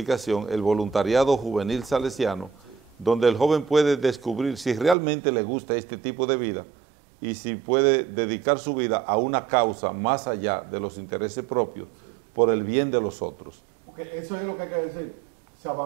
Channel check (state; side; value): drops out; left; at 5.0 s